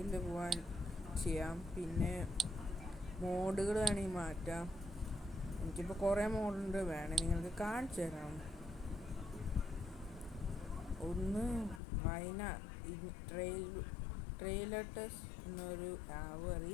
പോകാൻ ചെയ്യാം. പിന്നെ മോഡുകൾ വേണമെങ്കിൽ മാറ്റാം. എനിക്കിപ്പോൾ കുറേ മോഡുണ്ട്, വേണമെങ്കിൽ നിങ്ങൾക്ക് കാണിച്ചു തരാം. ഒന്ന് ട്രെയിലട്ടസ് എന്നൊരു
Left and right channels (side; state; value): right; drops out; at 11.8 s